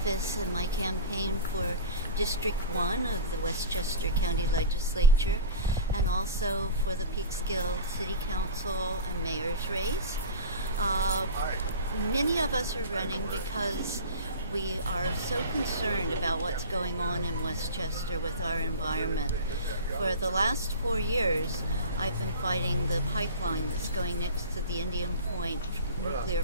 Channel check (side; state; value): both; inverted; correlation -0.31